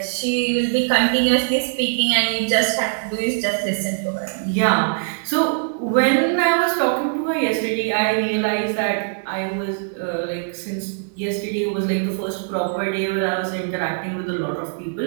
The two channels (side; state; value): left; silent; digital silence